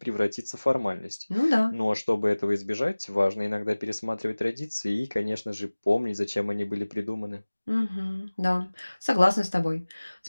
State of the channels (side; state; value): both; inverted; correlation -1.00